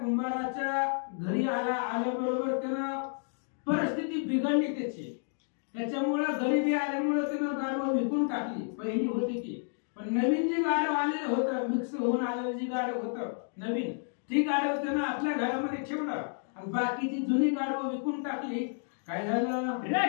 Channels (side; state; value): right; silent; 57 dB below the other